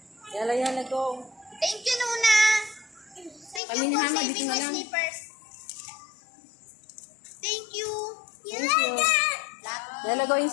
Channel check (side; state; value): right; drops out; at 3.6 s